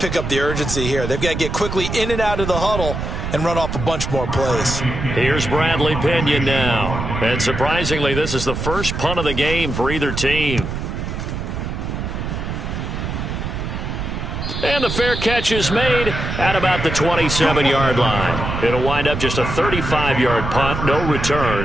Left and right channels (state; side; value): noise; right; rumble, 4 dB below the sound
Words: up the urgency here. They've got to get quickly in and out of the huddle and run off a bunch more plays. Here's Bradley Pinion now. And surprisingly, this is the first punt of the game for either team. And the fair catch is made at about the 27-yard line. It'll wind up just a 35-yard punt, no